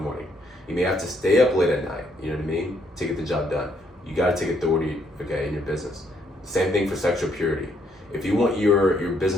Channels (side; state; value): both; normal; correlation 0.71